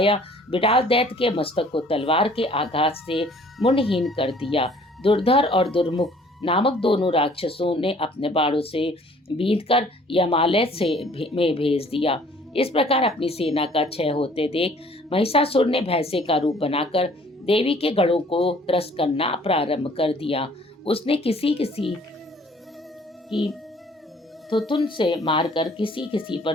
बिडाल दैत्य के मस्तक को तलवार के आघात से मुंडहीन कर दिया। दुर्धर और दुर्मुख नामक दोनों राक्षसों ने अपने बाणों से बींधकर यमालय में भेज दिया। इस प्रकार अपनी सेना का क्षय होते देख महिषासुर ने भैंसे का रूप बनाकर देवी के गढ़ों को त्रस्त करना प्रारंभ कर दिया। उसने किसी किसी की थुथुन से मारकर किसी किसी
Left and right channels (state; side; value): normal; both; correlation 0.56